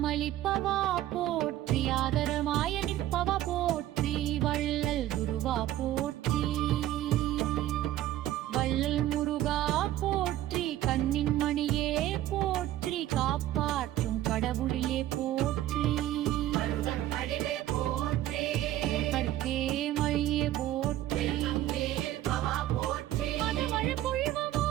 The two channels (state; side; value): quieter; left; 13.6 dB